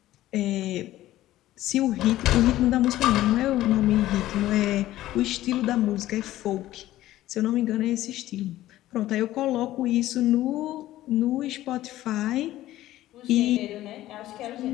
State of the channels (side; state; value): right; quieter; 14.9 dB